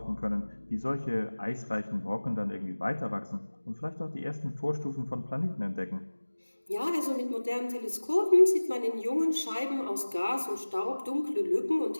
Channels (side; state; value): both; inverted; correlation -1.00